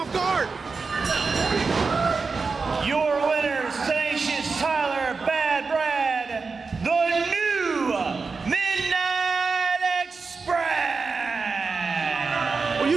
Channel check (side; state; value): left; quieter; 4.6 dB